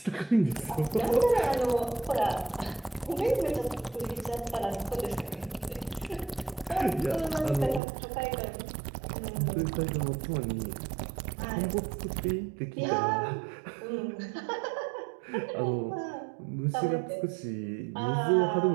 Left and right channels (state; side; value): drops out; left; at 7.8 s